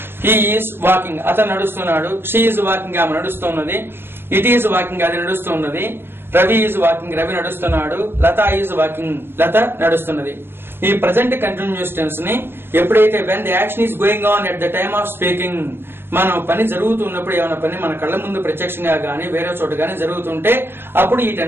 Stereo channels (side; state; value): left; late; 0.11 ms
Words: ఈజ్ వాకింగ్, అతను నడుస్తున్నాడు. షీ ఈజ్ వాకింగ్, ఆమె నడుస్తున్నది. ఇట్ ఈజ్ వాకింగ్, అది నడుస్తున్నది. రవి ఈజ్ వాకింగ్, రవి నడుస్తున్నాడు. లత ఈజ్ వాకింగ్, లత నడుస్తున్నది. ఈ ప్రజెంట్ కంటిన్యూస్ టెన్స్ ని ఎప్పుడైతే when the action is going on at the time of speaking, మనం పని జరుగుతున్నప్పుడు, ఏమైనా పని మన కళ్ళ ముందు ప్రత్యక్షంగా గానీ వేరే చోట గానీ జరుగుతుంటే అప్పుడు ఈ